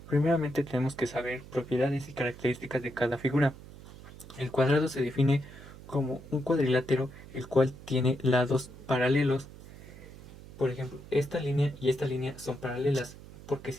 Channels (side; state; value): right; noise; hum, 17 dB below the sound